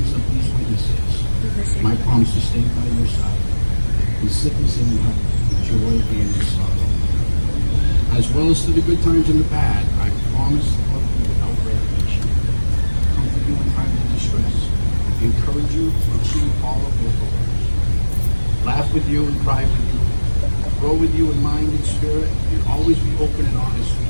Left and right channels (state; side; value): inverted; both; correlation -1.00